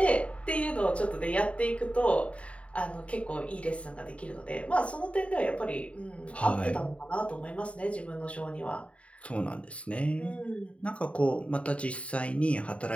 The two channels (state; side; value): late; right; 0.063 ms